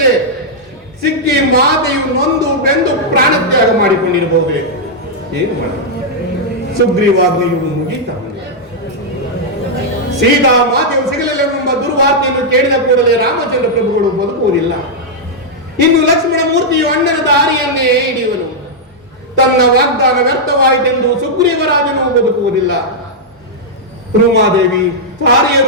ಸಿಕ್ಕಿ ಮಾತೆಯು ನೊಂದು ಬೆಂದು ಪ್ರಾಣತ್ಯಾಗ ಮಾಡಿಕೊಂಡಿರಬಹುದೇ? ಏನು ಮಾಡ ಸುಗ್ರೀವಾಜ್ಞೆಯು ಮುಗೀತ. ಸೀತಾ ಮಾತೆಯು ಸಿಗಲಿಲ್ಲವೆಂಬ ದುರ್ವಾರ್ತೆಯನ್ನು ಕೇಳಿದ ಕೂಡಲೇ ರಾಮಚಂದ್ರ ಪ್ರಭುಗಳು ಬದುಕುವುದಿಲ್ಲ. ಇನ್ನು ಲಕ್ಷ್ಮಣ ಮೂರ್ತಿಯು ಅಣ್ಣನ ದಾರಿಯನ್ನೇ ಹಿಡಿಯುವನು. ತನ್ನ ವಾಗ್ದಾನ ವ್ಯರ್ಥವಾಯಿತೆಂದು ಸುಗ್ರೀವರಾಜನು ಬದುಕುವುದಿಲ್ಲ. ಉಮಾದೇವಿ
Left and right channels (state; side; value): normal; both; correlation -0.05